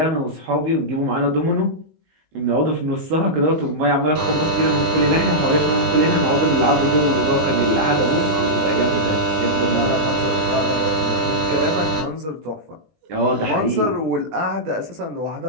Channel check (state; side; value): late; left; 19 ms